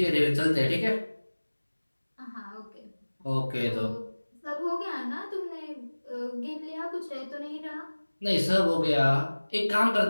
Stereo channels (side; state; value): both; inverted; correlation -1.00